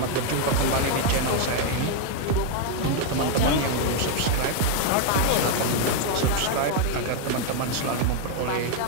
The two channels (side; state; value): both; different; correlation 0.00